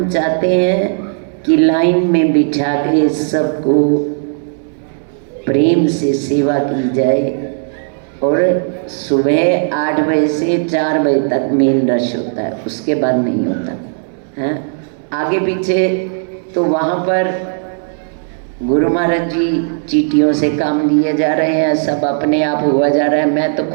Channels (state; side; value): silent; left; digital silence